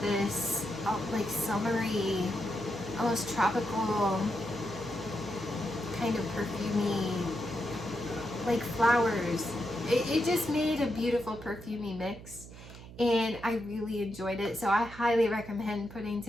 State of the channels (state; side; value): noise; right; hum, 16 dB below the sound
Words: this, like summery, almost tropical kind of perfumey, like flowers it just made a beautiful perfumey mix, and I really enjoyed it. So I highly recommend putting